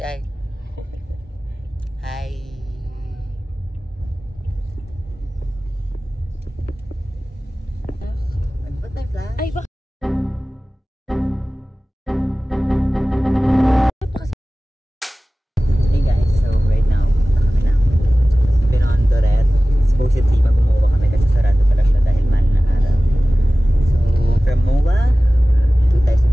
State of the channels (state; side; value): normal; both; correlation 0.97